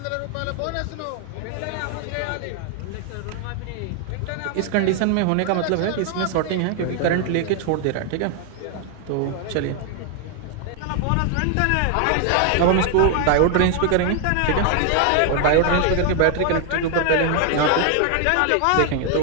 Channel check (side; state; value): both; different; correlation 0.00